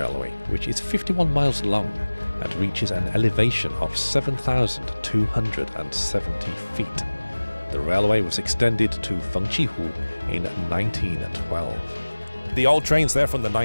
which is 51 miles long and reaches an elevation of 7,270 feet. The railway was extended to Fengqihu in 1912. The old trains there from the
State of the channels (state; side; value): inverted; both; correlation -1.00